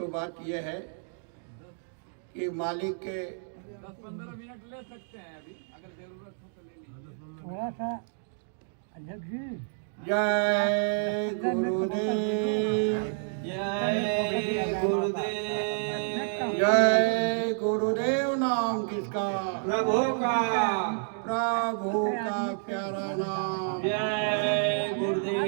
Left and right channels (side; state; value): left; silent; digital silence